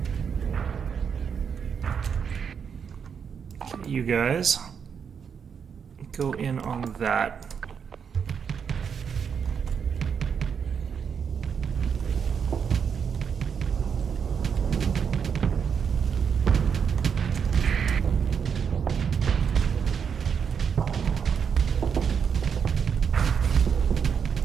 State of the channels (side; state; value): left; quieter; 6.9 dB